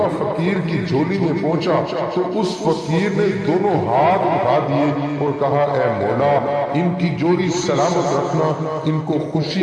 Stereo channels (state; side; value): identical; both; correlation 1.00